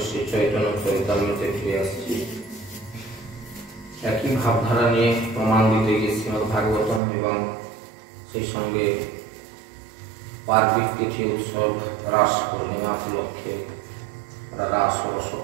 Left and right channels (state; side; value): drops out; left; at 7.0 s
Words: একই ভাবধারা নিয়ে প্রমাণ দিতে গিয়ে শ্রীমদ ভাগবতম এবং সেই সঙ্গে পার্বিক তিথি উৎসব রাস পূর্ণিমা উপলক্ষে রাস ও